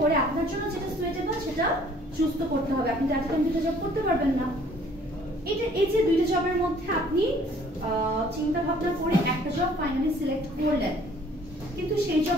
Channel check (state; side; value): normal; both; correlation 0.57